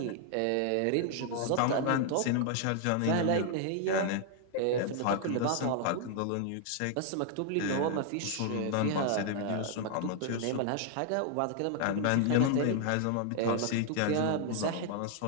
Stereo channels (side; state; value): both; different; correlation 0.00